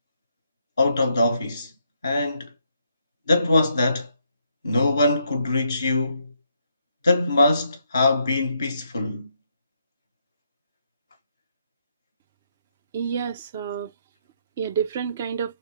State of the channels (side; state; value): both; inverted; correlation -0.76